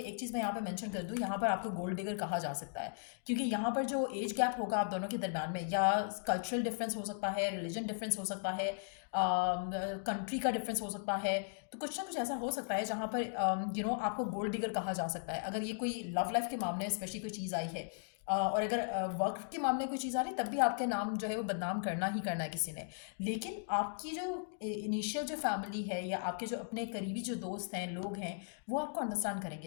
एक चीज़ मैं यहाँ पे मेंशन कर दूँ, यहाँ पर आपको गोल्ड डिगर कहा जा सकता है, क्योंकि यहाँ पर जो एज गैप होगा आप दोनों के दरम्यान में, या कल्चरल डिफरेंस हो सकता है, रिलीजन डिफरेंस हो सकता है, कंट्री का डिफरेंस हो सकता है। तो कुछ ना कुछ ऐसा हो सकता है जहाँ पर आपको गोल्ड डिगर कहा जा सकता है। अगर ये कोई लव लाइफ के मामले में स्पेशली कोई चीज़ आई है, और अगर वर्क के मामले में कोई चीज़ आ रही है, तब भी आपके नाम जो है वो बदनाम करना ही करना है किसी ने। लेकिन आपकी जो इनिशियल जो फैमिली है, या आपके जो अपने करीबी जो दोस्त हैं, लोग हैं, वो आपको अंडरस्टैंड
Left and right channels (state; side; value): silent; right; digital silence